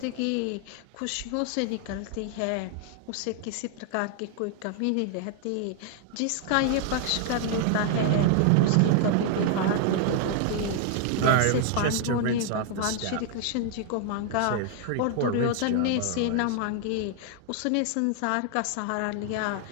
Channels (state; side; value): different; both; correlation 0.00